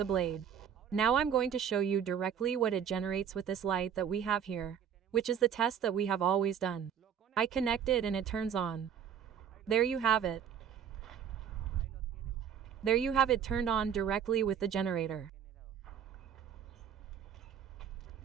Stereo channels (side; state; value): left; quieter; 8.3 dB